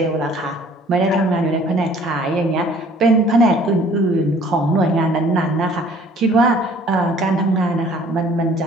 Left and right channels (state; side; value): normal; both; correlation 0.54